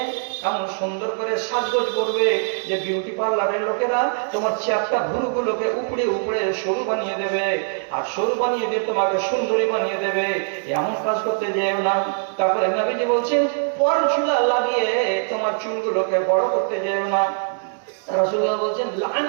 এমন সুন্দর করে সাজগোজ করবে যে বিউটি পার্লারের লোকেরা তোমার চ্যাপটা ভুরুগুলোকে উপরে উপরে সরু বানিয়ে দেবে, আর সরু বানিয়ে দিয়ে তোমাকে সুন্দরী বানিয়ে দেবে। এমন কাজ করতে যেও না। তারপরে নবীজি বলছেন পরচুলা লাগিয়ে তোমার চুলগুলোকে বড় করতে যেও না। রাসূলুল্লাহ বলছেন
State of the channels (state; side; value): silent; left; 58 dB below the other